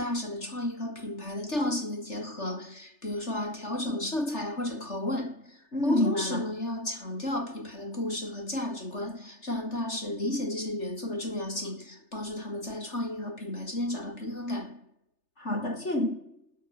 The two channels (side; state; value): right; late; 3.3 ms